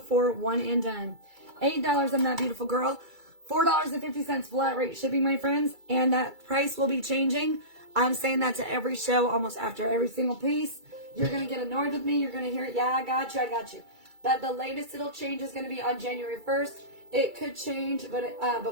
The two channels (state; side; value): late; left; 2.3 ms